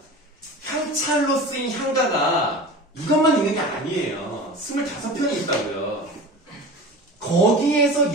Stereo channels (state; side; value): normal; both; correlation 0.34